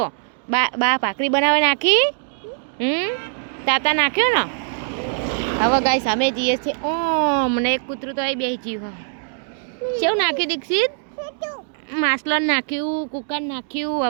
બા ભાખરી બનાવે નાખી તાતા નાખ્યો ને હવે ગાઈસ અમે જઈએ છીએ મને એક કૂતરું તો અહીં બેસી જીવ કેવું નાખ્યું દીક્ષિત માસલન નાખ્યું કુકર નાખ્યું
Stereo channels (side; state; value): left; silent; digital silence